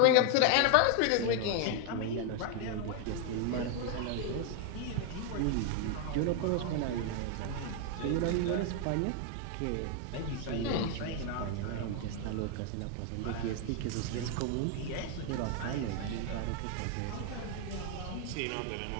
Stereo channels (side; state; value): both; different; correlation 0.01